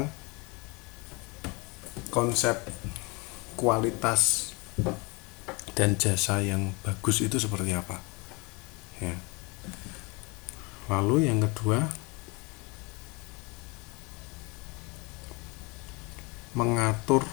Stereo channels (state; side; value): quieter; right; 27.8 dB